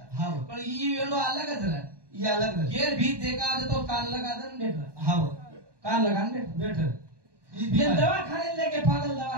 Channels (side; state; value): left; late; 1.2 ms